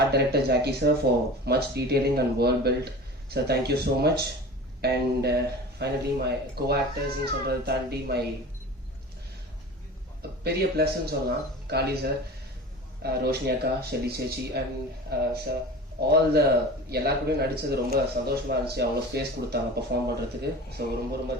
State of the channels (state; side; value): normal; both; correlation 0.36